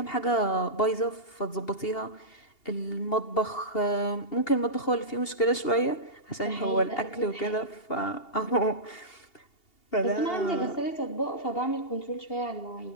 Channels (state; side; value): late; right; 2.8 ms